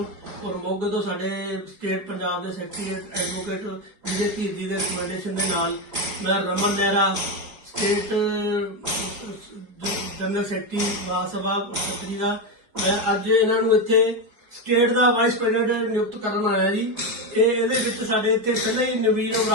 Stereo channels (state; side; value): late; left; 4.7 ms